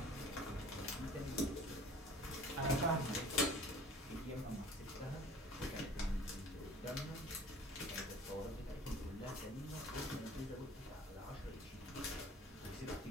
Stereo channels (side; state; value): both; normal; correlation 0.47